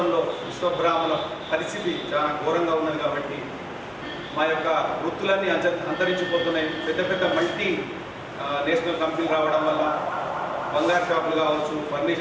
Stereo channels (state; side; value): identical; both; correlation 1.00